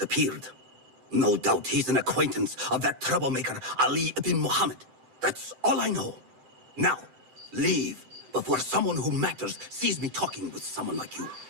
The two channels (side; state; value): left; late; 7.8 ms